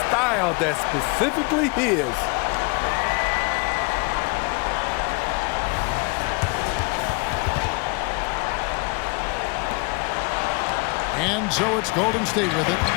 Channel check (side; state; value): right; quieter; 30.5 dB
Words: style that's specifically his. And so it's Golden State with it.